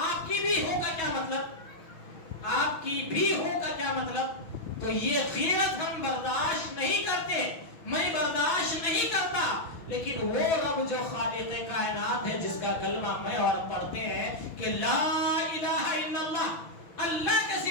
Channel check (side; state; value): right; late; 6.2 ms